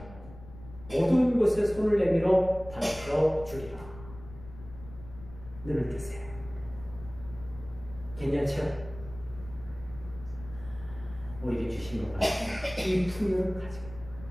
모든 곳에 손을 내밀어 밝혀 주리라. 눈을 뜨세요. 괜찮죠? 우리에게 주신 것 같습니다. 이 풍요를 가지고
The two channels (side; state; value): left; noise; rumble, 16 dB below the sound